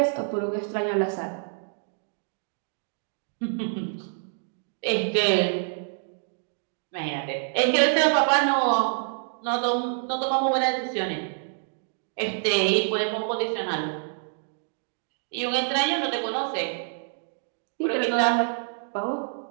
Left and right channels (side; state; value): left; silent; digital silence